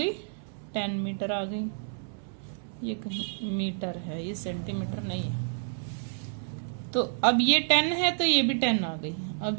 10 मीटर आ गई। ये कहीं मीटर है, ये सेंटीमीटर नहीं है। तो अब ये 10 है तो ये भी 10 आ गई।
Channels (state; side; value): silent; left; 58 dB below the other